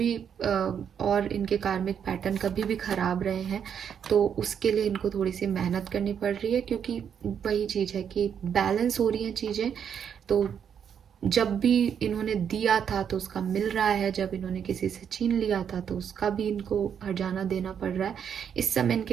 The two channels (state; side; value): quieter; left; 8.0 dB